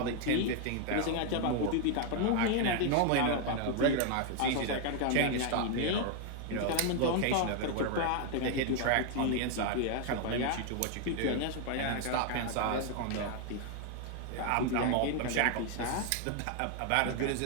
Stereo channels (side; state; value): both; different; correlation 0.00